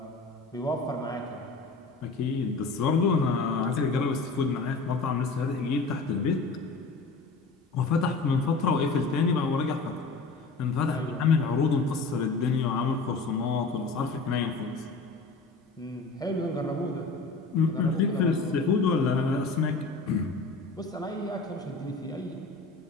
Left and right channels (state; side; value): quieter; right; 3.9 dB